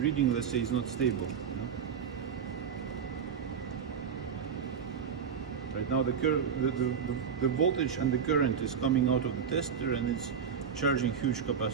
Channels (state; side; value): quieter; left; 7.1 dB